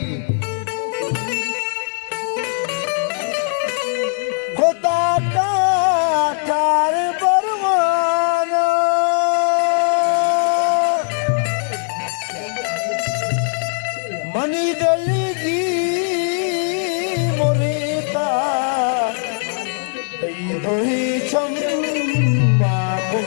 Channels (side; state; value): right; silent; 66 dB below the other